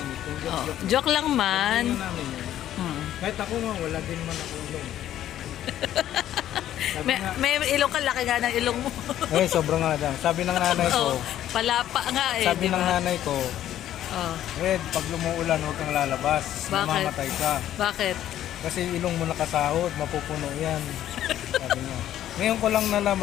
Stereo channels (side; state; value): right; quieter; 12.0 dB